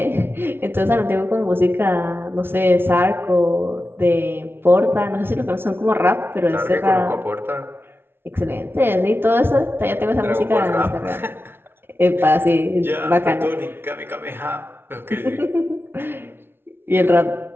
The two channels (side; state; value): left; late; 0.11 ms